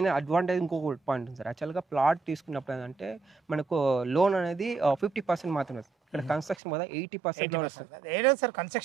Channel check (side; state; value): left; drops out; at 6.6 s